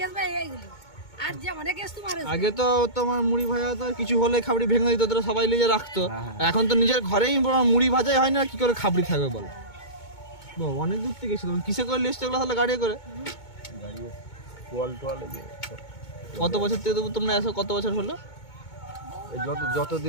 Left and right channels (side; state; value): right; late; 2.2 ms